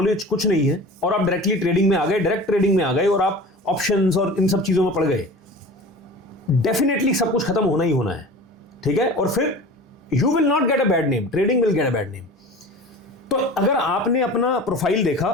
कुछ नहीं है और आप डायरेक्टली ट्रेडिंग में आ गए, डायरेक्ट ट्रेडिंग में आ गए और आप ऑप्शंस और इन सब चीजों में पड़ गए, डेफिनेटली सब कुछ खत्म होना ही होना है, ठीक है? और फिर you will not get a bad name, trading will get a bad name. तो अगर आपने अपना प्रोफाइल देखा,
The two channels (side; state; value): both; normal; correlation 0.37